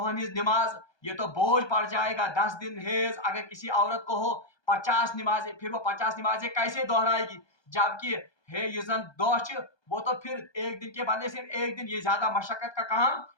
ہز نماز یہ تو بوجھ پڑ جائے گا 10 دن حیض اگر کسی عورت کو ہو 50 نمازیں پھر وہ 50 نمازیں کیسے دہرائے گی جبکہ ہے یہ زن دہ وہ تو پھر ایک دن کے بدلے سے ایک دن یہ زیادہ مشقت کا کام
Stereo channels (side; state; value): right; late; 1.2 ms